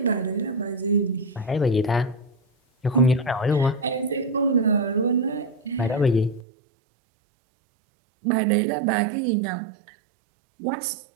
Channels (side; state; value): left; drops out; at 6.5 s